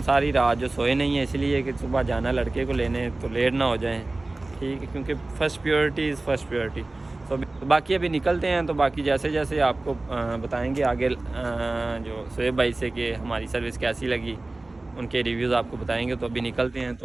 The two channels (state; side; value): quieter; left; 3.0 dB